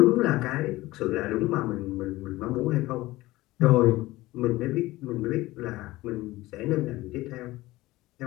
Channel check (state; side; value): quieter; right; 18.6 dB